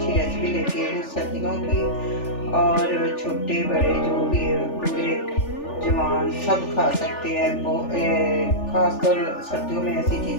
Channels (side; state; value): right; late; 3.4 ms